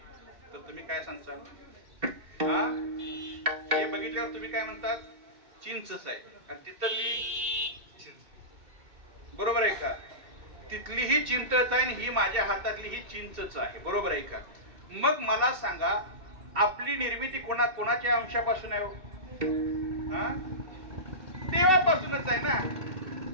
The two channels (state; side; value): late; left; 2.7 ms